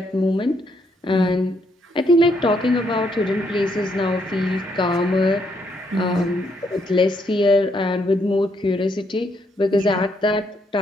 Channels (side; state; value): both; normal; correlation 0.74